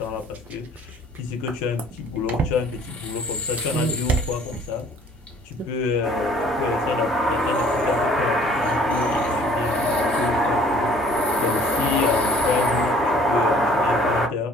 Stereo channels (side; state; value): both; normal; correlation 0.55